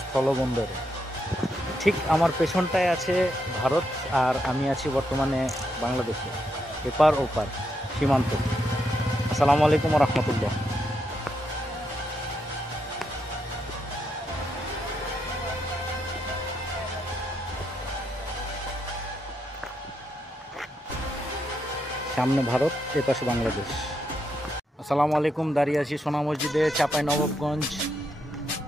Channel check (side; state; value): both; normal; correlation 0.81